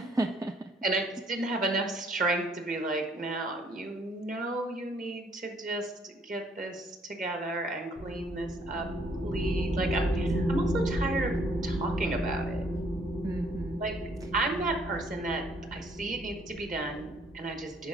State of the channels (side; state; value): both; normal; correlation 0.65